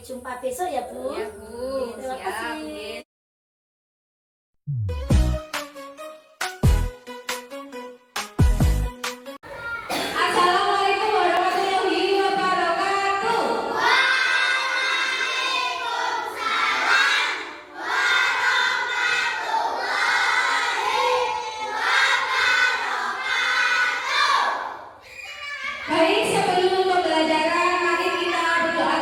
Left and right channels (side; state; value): both; identical; correlation 1.00